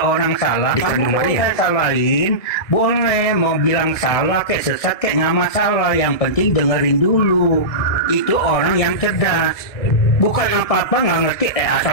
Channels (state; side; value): late; right; 1.6 ms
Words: orang salah, kamu boleh salahin, boleh mau bilang salah kayak sesat kayak nggak masalah. Yang penting dengerin dulu. Itu orang yang cerdas. Bukan apa-apa nggak ngerti,